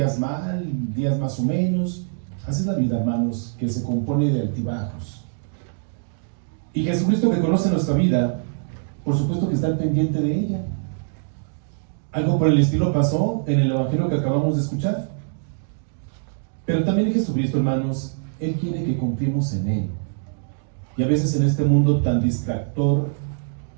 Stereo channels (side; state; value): left; silent; digital silence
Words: mal, días más o menos. Así es la vida, hermanos, que se compone de altibajos. Y Jesucristo, que conoce nuestra vida, por supuesto que está al pendiente de ella. Algo por el estilo pasó en el evangelio que acabamos de escuchar. Pero también Jesucristo, hermanos, Él quiere que confiemos en Él. Y a veces en este mundo tan distractor